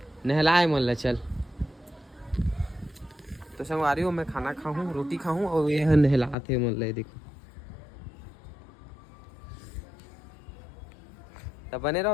नहलाए मन ला। चल तो संगवारी हो मैं खाना खाऊं, रोटी खाऊं और ये नहलाते मन ला। देखो तो बने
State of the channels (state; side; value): drops out; right; at 6.4 s